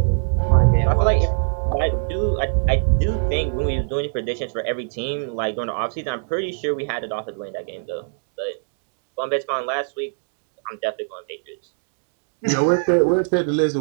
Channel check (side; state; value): left; silent; digital silence